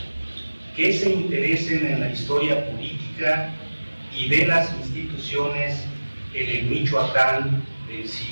que se interesen en la historia política y de las instituciones en el Michoacán del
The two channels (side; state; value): both; inverted; correlation -1.00